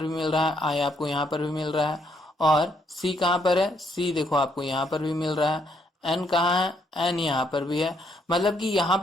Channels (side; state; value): both; normal; correlation 0.73